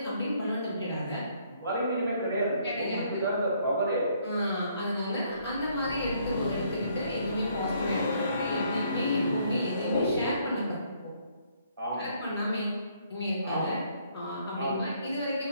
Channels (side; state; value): both; inverted; correlation -0.67